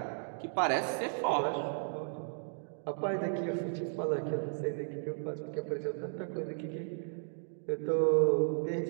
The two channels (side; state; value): left; silent; digital silence